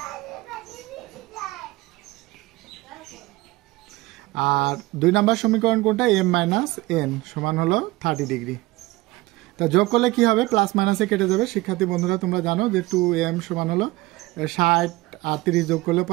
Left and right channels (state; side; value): quieter; left; 20.0 dB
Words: আর 2 নাম্বার সমীকরণ কোনটা, m মাইনাস n সমান হলো 30 ডিগ্রি। তা যোগ করলে কি হবে, প্লাস মাইনাসে কেটে যাবে। শিক্ষার্থী বন্ধুরা তোমরা জানো যে 2m সমান হলো 60 আর 30 যোগ করলে